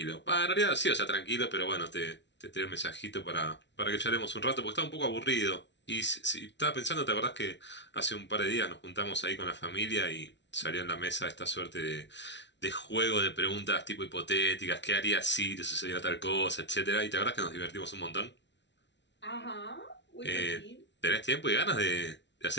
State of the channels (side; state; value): right; late; 0.51 ms